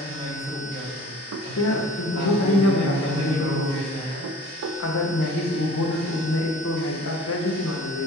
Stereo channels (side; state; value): both; normal; correlation 0.46